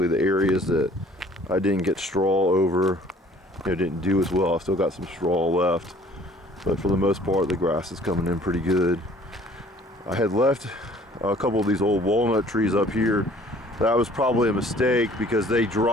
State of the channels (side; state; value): both; normal; correlation 0.54